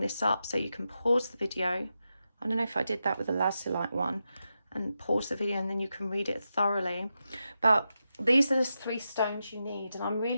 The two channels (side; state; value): both; inverted; correlation -0.88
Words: this up so you can pause the video. I don't know if I did that with the Lazulite one, and pause the video and then you can read it thoroughly. But these are the three stones you need. And I'm